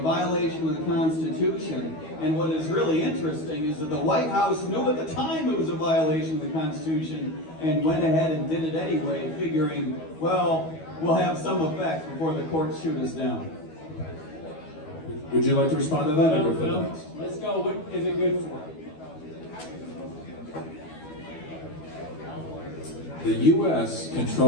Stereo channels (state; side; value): late; right; 12 ms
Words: of the Constitution. And what is really interesting is that the White House knew at the time it was a violation of the Constitution and went ahead and did it anyway, figuring, well, we'll have some effect before the courts shoot us down. Would you like to respond to that? or No, go for the no. next? Let's go. What is it good for? The U.S.